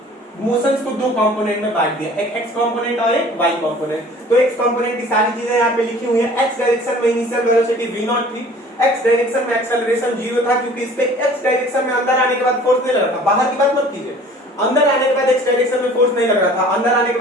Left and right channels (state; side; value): normal; both; correlation 0.48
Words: मोशंस को दो कंपोनेंट में बांट दिया, एक x कंपोनेंट और एक y कंपोनेंट। तो x कंपोनेंट की सारी चीजें यहाँ पे लिखी हुई है। x डायरेक्शन में इनिशियल वेलोसिटी v0 थी, x डायरेक्शन में एक्सेलरेशन 0 था, क्योंकि इस पे x डायरेक्शन में अंदर आने के बाद फोर्स नहीं लग रहा था। बाहर की बात मत कीजिए, अंदर आने के बाद x डायरेक्शन में फोर्स नहीं लग रहा था, अंदर आने के